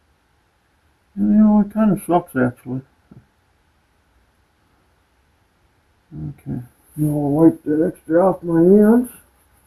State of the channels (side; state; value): both; identical; correlation 1.00